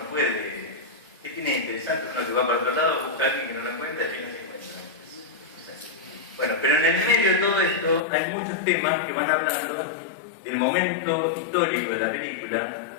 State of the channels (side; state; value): right; drops out; at 8.0 s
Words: puede. ¿Qué tiene interesante? Uno que va para otro lado, busca a alguien que no lo encuentra y al final se encuentra. Bueno, pero en el medio de todo esto hay muchos temas que van hablando del momento histórico de la película,